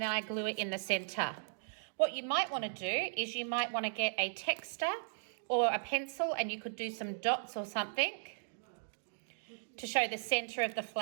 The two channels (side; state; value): left; silent; digital silence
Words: I glue it in the centre. What you might want to do is you might want to get a texter or a pencil, and you could do some dots or something to show the centre of the